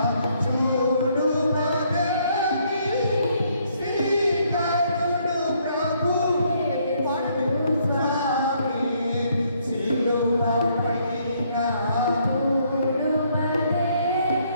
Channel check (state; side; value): inverted; both; correlation -0.69